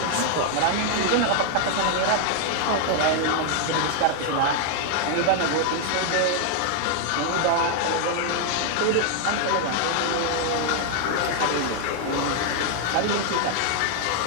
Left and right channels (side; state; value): both; different; correlation 0.00